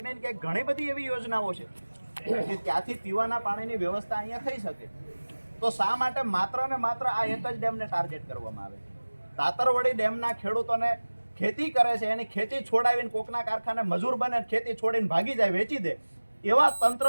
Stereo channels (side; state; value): both; inverted; correlation -1.00